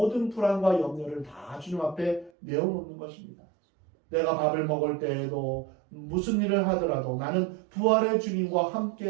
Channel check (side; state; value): left; drops out; at 2.3 s